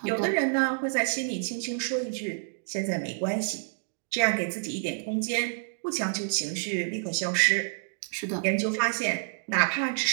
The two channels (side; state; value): left; silent; digital silence